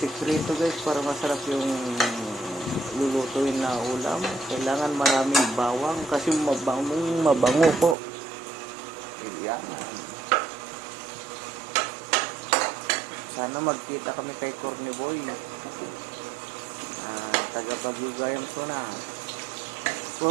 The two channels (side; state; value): left; drops out; at 8.0 s